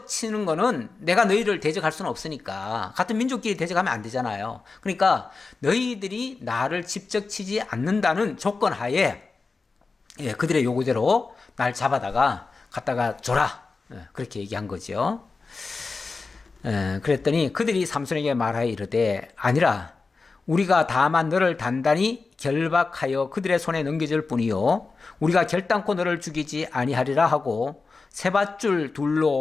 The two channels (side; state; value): right; quieter; 4.2 dB